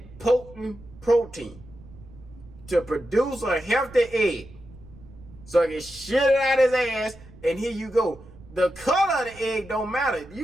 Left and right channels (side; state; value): right; noise; rumble, 20 dB below the sound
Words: potent protein to produce a healthy egg. So it can shit it out his ass, and here you go. The color of the egg don't matter.